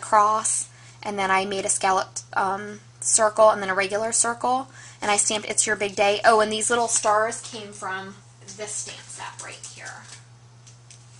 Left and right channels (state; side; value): identical; both; correlation 1.00